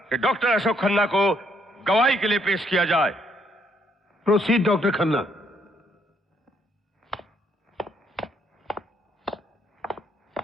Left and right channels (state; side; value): normal; both; correlation 0.71